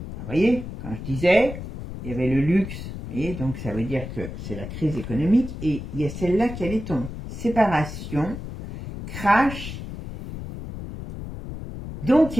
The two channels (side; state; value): left; noise; rumble, 9 dB below the sound